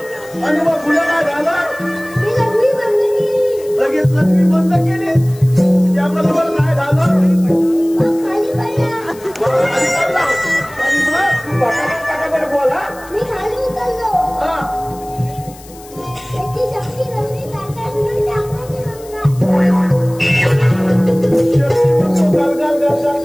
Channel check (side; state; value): left; noise; hiss, 21 dB below the sound